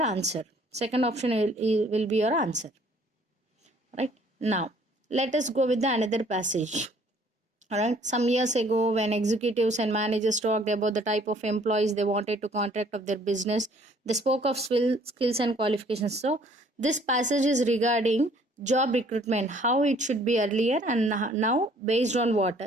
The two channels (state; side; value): normal; both; correlation 0.59